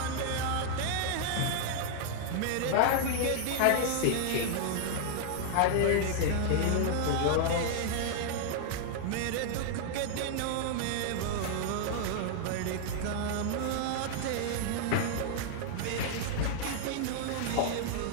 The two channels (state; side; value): different; both; correlation -0.01